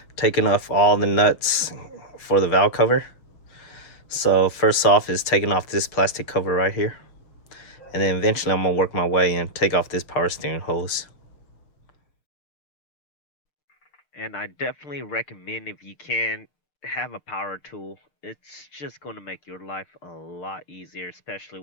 taking off all the nuts for the valve cover. So first off is taking off this plastic cover right here, and then eventually I'm gonna work my way and take off this power steering hose. And I definitely recommend, if you can, have a power tool. It's just going to make your life a lot easier, especially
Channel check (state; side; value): late; right; 6.6 ms